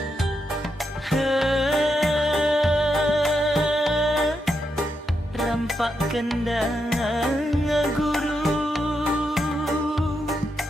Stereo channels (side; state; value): both; normal; correlation 0.83